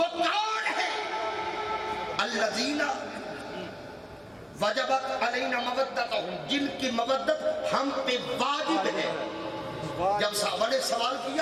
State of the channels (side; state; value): both; identical; correlation 1.00